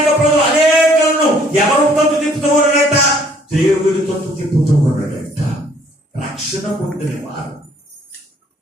ప్రజలు అనేకులను ఎవరు తప్పు తిప్పుతూ ఉన్నాడట? దేవుడి తప్పు తిప్పుతూ ఉన్నాడట. రక్షణ పొందినవారు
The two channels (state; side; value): normal; both; correlation 0.61